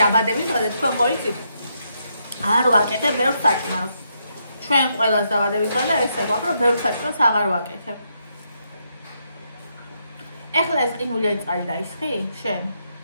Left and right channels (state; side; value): inverted; both; correlation -0.78